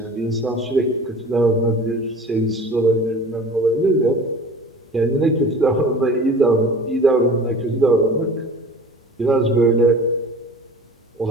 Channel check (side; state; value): both; normal; correlation 0.41